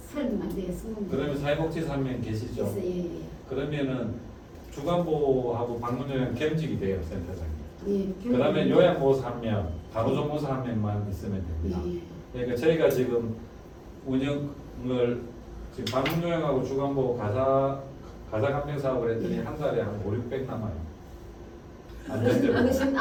설명 안 되겠습니다. 그러면 사회복지사 한 명 계시죠? 예, 예. 그러면은 주간보하고 방문요양 겸직이 돼요, 센터장이. 예. 그 다음에 요양보호사 한 명, 간호조무사 한 명만 있으면 됩니다. 예, 예. 그러니까 저희가 지금 운영을 지금 방문요양하고 주간보호 가사감정 사업을 했더니 한 달에 한 5, 600 남아요. 안전대로. 어르신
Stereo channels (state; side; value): identical; both; correlation 1.00